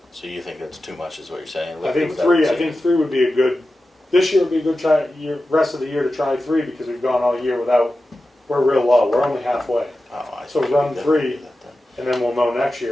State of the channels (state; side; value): normal; both; correlation 0.93